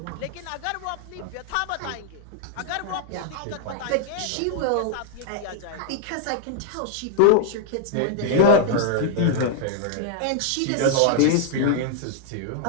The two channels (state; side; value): different; both; correlation -0.01